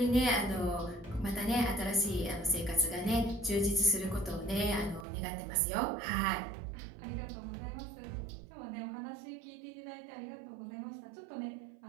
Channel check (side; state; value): left; drops out; at 5.1 s